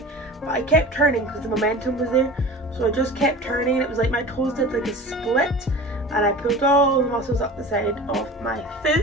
but I kept turning because the momentum was there, so I just kept turning and it was like my toes did like a split and I pulled all the muscles up the side of my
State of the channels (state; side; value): normal; both; correlation 0.37